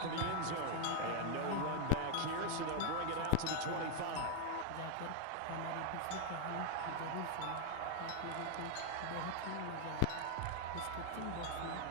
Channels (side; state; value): both; different; correlation 0.01